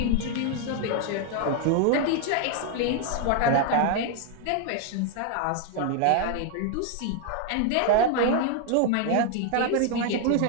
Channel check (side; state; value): both; different; correlation 0.00